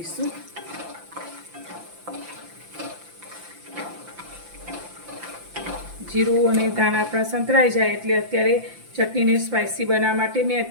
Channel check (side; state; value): left; late; 5.8 ms